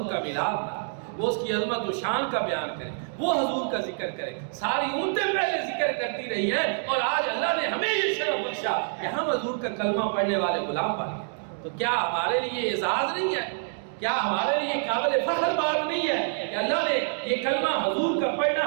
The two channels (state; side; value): silent; left; digital silence